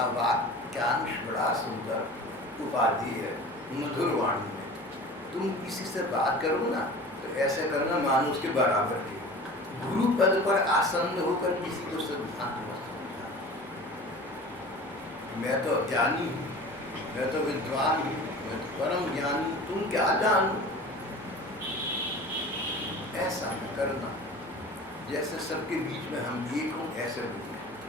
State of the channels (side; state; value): both; normal; correlation 0.39